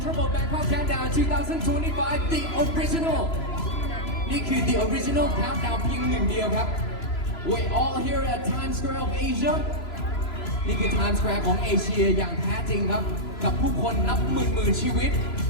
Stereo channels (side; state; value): right; late; 3.0 ms